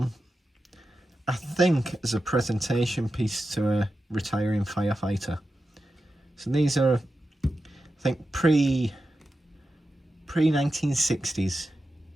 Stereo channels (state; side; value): normal; both; correlation 0.91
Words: I think as a presentation piece to a retiring firefighter. So these are, I think, pre-1960s